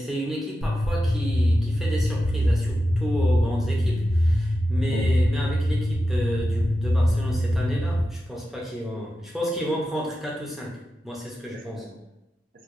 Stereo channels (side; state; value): both; normal; correlation 0.91